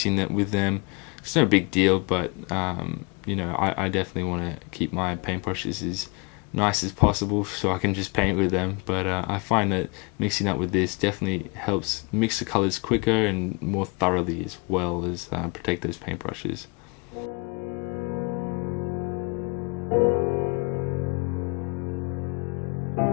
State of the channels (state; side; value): quieter; right; 30.8 dB